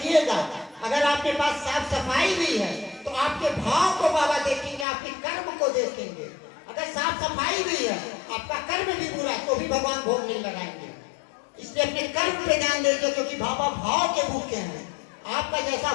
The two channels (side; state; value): right; drops out; at 4.9 s